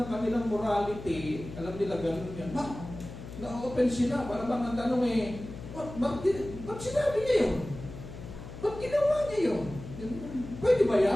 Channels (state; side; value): noise; left; hum, 12 dB below the sound